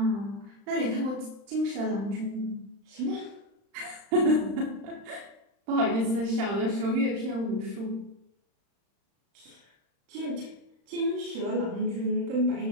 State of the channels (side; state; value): left; late; 35 ms